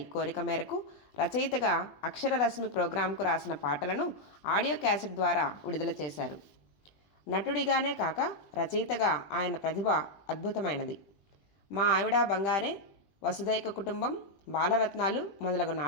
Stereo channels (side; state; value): right; late; 20 ms